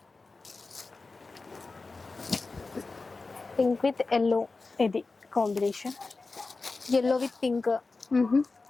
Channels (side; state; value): right; quieter; 3.8 dB